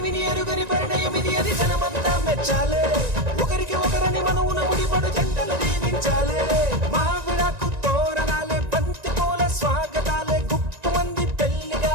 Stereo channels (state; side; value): late; left; 1.9 ms